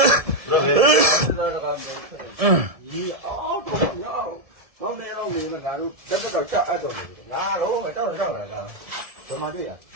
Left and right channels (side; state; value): left; late; 1.7 ms